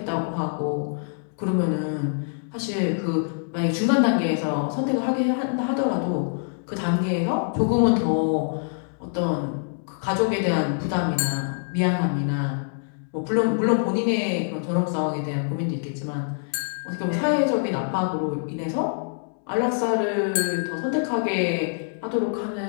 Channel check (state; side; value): silent; right; 62 dB below the other